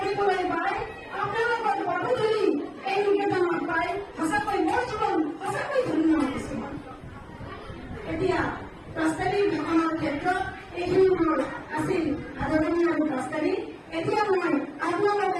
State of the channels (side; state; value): both; identical; correlation 1.00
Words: পাই, আপোনালোকৰ পদধূলি এই নিকেতনত পাই সঁচাকৈ মোৰ জীৱন সঁচাকৈ ধন্য হৈছো। এতিয়া প্ৰস্তাৱিক ভাষণৰ ক্ষেত্ৰত এইখিনি মোৰ আছিল আদৰণি আৰু প্ৰস্তাৱিক। এতিয়া মই